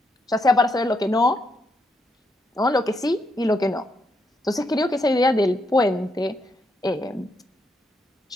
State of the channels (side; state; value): both; normal; correlation 0.79